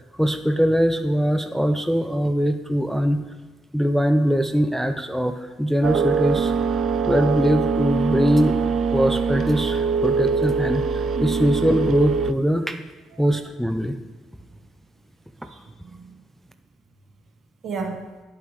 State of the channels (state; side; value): normal; both; correlation 0.84